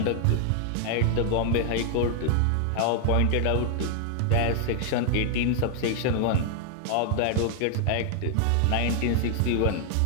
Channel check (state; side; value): different; both; correlation 0.00